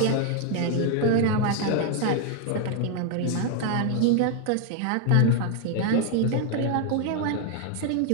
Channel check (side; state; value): both; different; correlation 0.00